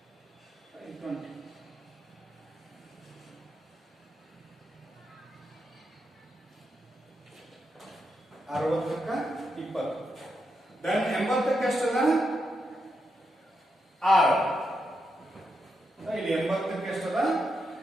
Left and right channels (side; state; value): both; normal; correlation 0.83